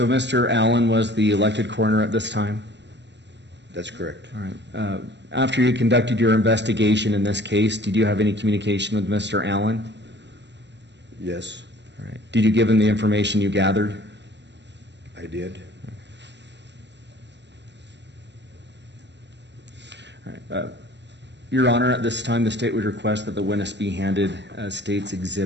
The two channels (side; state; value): left; late; 0.51 ms